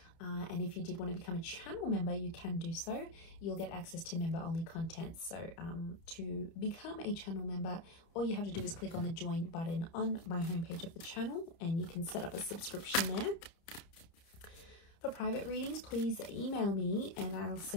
And if you did want to become a channel member, you can do so. You'll get access to member-only content. So to become a channel member, all you have to do is click on the join button on my homepage of the channel, and you can set up a subscription there. For private readings, please email me and I'll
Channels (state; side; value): late; right; 30 ms